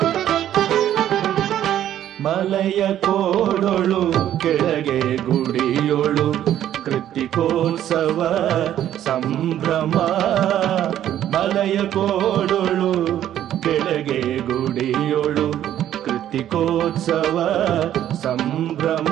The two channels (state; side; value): quieter; left; 11.5 dB